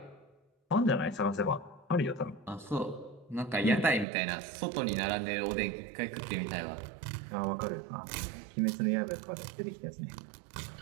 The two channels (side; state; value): left; drops out; at 4.0 s